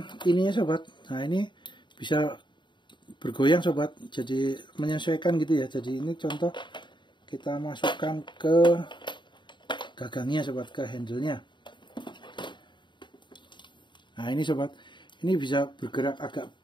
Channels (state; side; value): late; right; 0.23 ms